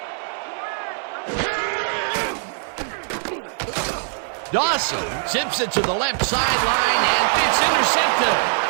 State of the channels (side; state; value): left; silent; 64 dB below the other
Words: Dawson zips it to the left sideline, and it's intercepted.